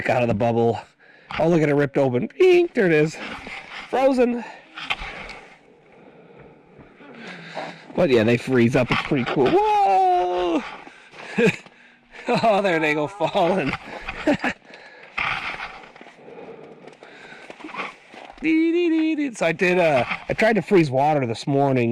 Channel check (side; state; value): both; identical; correlation 1.00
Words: out of the bubble. Oh, look at it ripped open. Bing, there it is. Frozen. But yeah, they freeze up. It's pretty cool. Whoa! Oh, there they go falling. So I tried to freeze water this